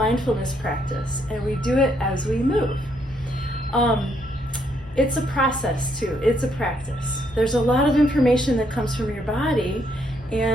practice, and we do it as we move. It's a process too, it's a practice. There's a lot of information that comes from your body,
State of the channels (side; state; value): both; normal; correlation 0.73